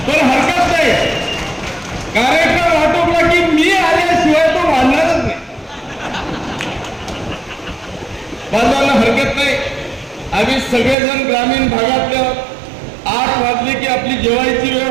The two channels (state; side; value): drops out; left; at 11.0 s